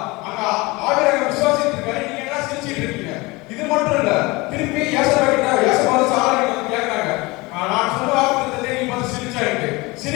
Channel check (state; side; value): quieter; right; 23.6 dB